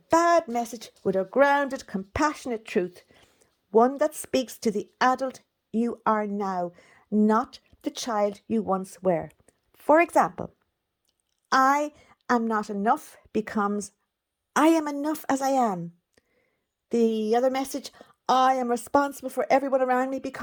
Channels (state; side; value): identical; both; correlation 1.00